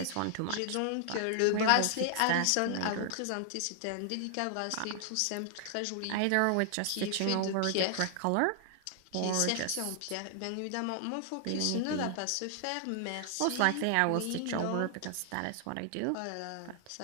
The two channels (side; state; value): both; different; correlation 0.00